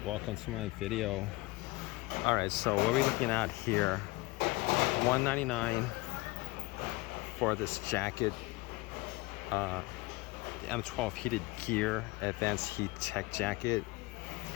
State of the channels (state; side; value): quieter; right; 22.4 dB